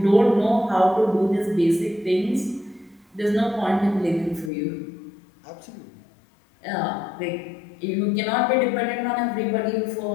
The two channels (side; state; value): right; drops out; at 4.5 s